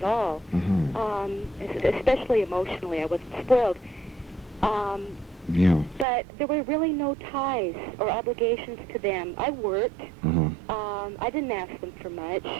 all. Especially emotionally, I wasn't spoiled. But there were really no ties or obligations to them. I worked. I didn't ask them for much.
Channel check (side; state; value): left; drops out; at 6.1 s